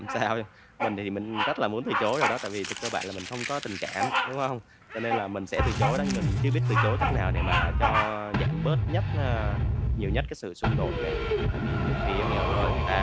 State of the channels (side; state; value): both; identical; correlation 1.00